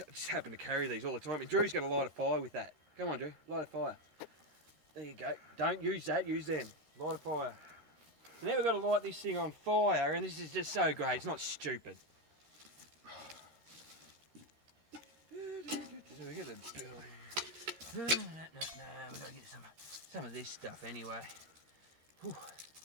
happen to carry these all the time. And Drew's going to light a fire with that. Come on, Drew, light a fire. There you go. Don't use that, use them. Light a fire. So now we've got to light this thing on fire, and this is just so great. It's not stupid. No, we've got to get some of this stuff anyway. Whew.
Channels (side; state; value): left; late; 13 ms